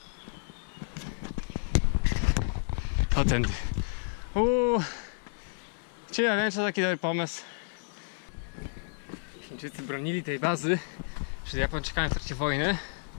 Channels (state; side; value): silent; right; 57 dB below the other